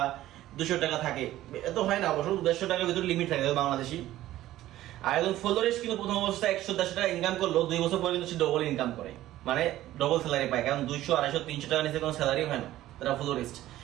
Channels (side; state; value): left; quieter; 14.6 dB